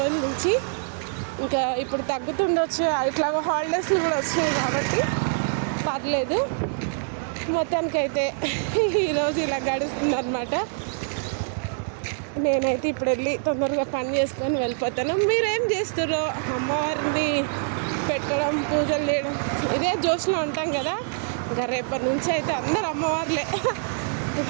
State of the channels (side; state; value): left; silent; digital silence